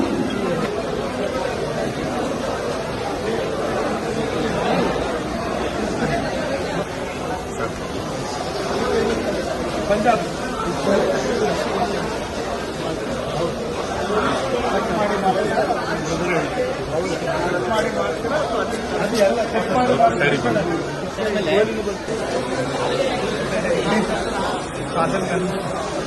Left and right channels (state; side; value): identical; both; correlation 1.00